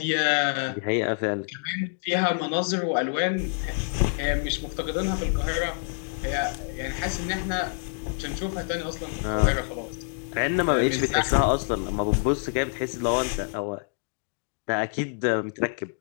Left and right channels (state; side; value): silent; right; digital silence